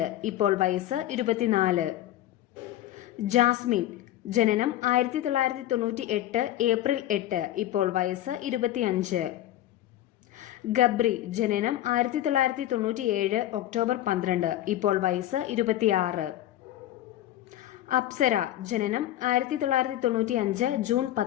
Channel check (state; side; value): quieter; right; 13.6 dB